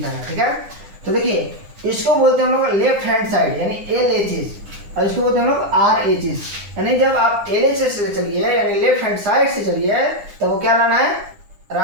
है, ठीक है। तो देखिए इसको बोलते हैं हम लोग लेफ्ट हैंड साइड यानी LHS, और इसको बोलते हैं हम लोग RHS। यानी जब आप LHS से चलिए यानी लेफ्ट हैंड साइड से चलिए तो वो क्या लाना है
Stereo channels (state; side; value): late; left; 9.9 ms